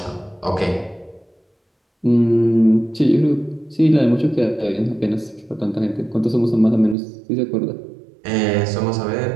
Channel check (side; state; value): left; drops out; at 7.0 s